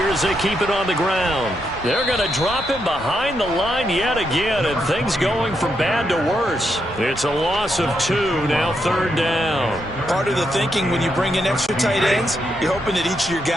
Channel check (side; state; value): both; normal; correlation 0.81